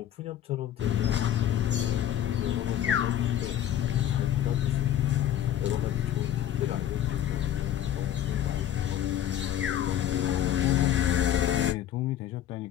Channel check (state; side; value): quieter; right; 11.1 dB